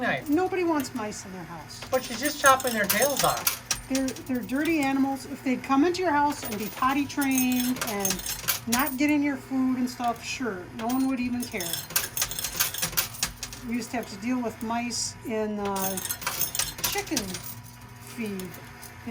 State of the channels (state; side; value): identical; both; correlation 1.00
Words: Nobody wants mice in their house. But she's just chopping their tails off. They're dirty animals. If they'd come into your house and be potty trained and not get in your food and stuff, sure, no one would even care. We used to have to deal with mice in chicken feed.